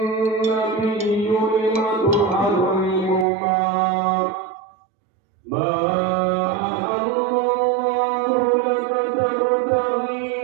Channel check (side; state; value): left; drops out; at 3.2 s